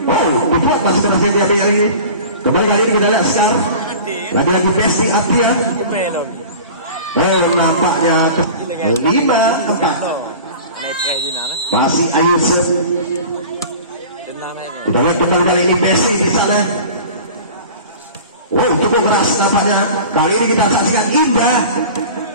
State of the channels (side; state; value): both; inverted; correlation -0.39